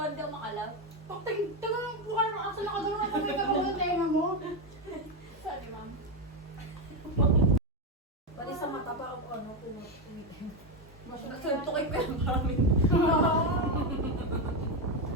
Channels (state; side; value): normal; both; correlation 0.09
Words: hindi ako makalap. Tagal ng mukha ng aso na kagano'n ang kamay ka sa tenga mo. Sorry, ma'am. Pati sa mata pa ako ano, kumitin. Nagsuntukin ko yung maraming.